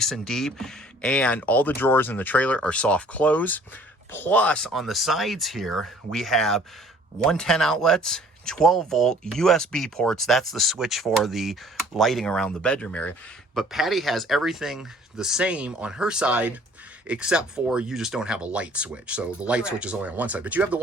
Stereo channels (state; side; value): normal; both; correlation 0.54